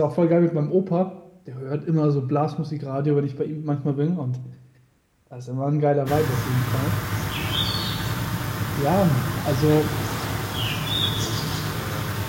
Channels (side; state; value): both; identical; correlation 1.00